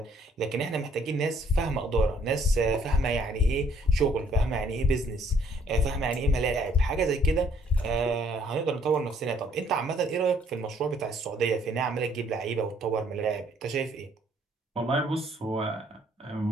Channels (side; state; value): both; normal; correlation 0.64